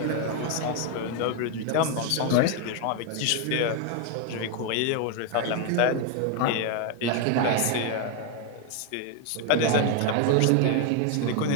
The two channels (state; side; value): different; both; correlation 0.01